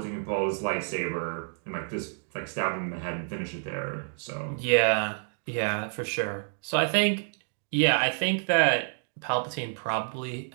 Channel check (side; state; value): left; silent; digital silence